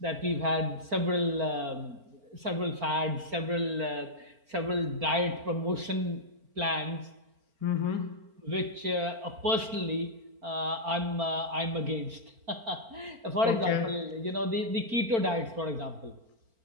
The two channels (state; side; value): late; left; 4.4 ms